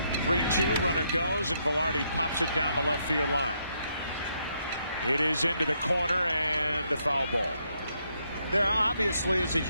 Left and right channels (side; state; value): both; inverted; correlation -0.76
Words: 3-2, runner goes, and Velarde pops it down the left field line. It is into the corner and a foul ball. There obviously is a